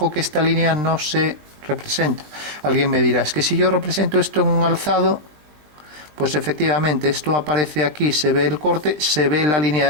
que esta línea no se representa. Alguien me dirá, es que si yo represento esto en un alzado, pues efectivamente esto aparece aquí, se ve el corte, se ve la línea de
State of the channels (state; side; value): late; left; 20 ms